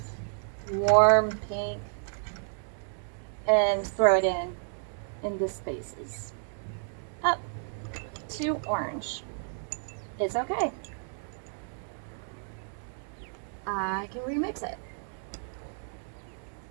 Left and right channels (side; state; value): left; silent; digital silence